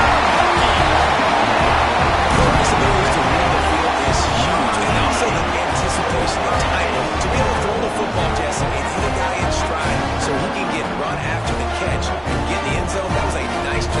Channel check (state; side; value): identical; both; correlation 1.00